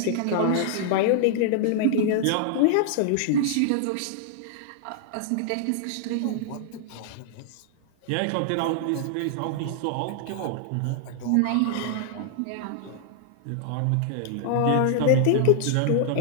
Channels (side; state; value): both; different; correlation 0.00